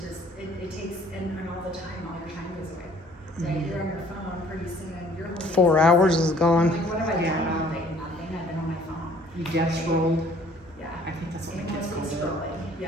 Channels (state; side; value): normal; both; correlation 0.56